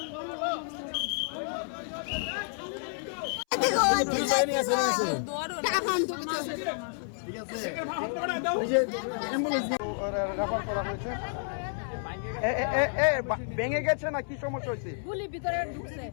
রেফার করা হয়েছে। ভেঙে গেছে না কি সমস্যা হয়েছে? গুলি ভিতরে ঢুকছে,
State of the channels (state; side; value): silent; right; 58 dB below the other